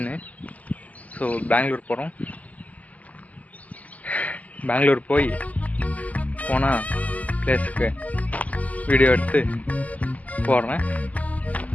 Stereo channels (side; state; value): right; late; 0.076 ms